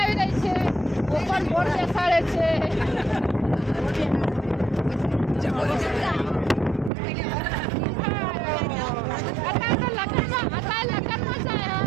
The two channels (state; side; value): drops out; left; at 6.9 s